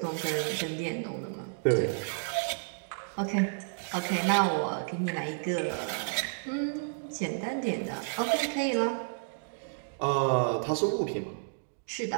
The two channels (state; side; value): silent; left; digital silence